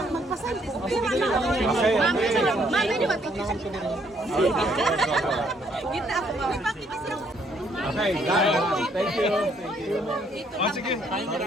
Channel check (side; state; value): both; normal; correlation 0.68